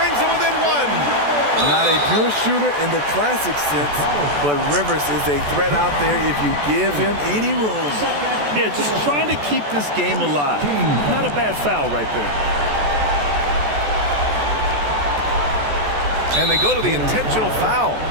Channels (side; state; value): left; late; 14 ms